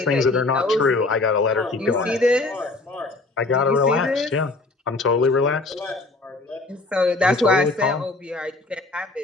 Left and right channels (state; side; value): quieter; right; 3.3 dB